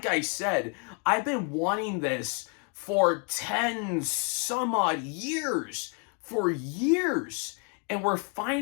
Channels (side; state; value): right; quieter; 37.5 dB